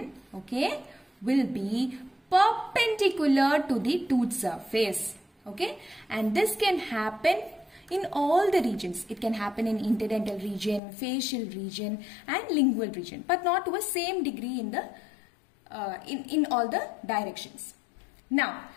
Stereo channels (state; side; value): drops out; right; at 10.8 s